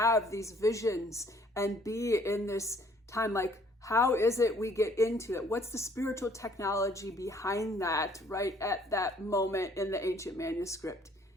these visions and be in this time, like, how is it we get into it? What's the spiritual technology behind that right at that moment in the ancient manuscript?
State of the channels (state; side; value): normal; both; correlation 0.60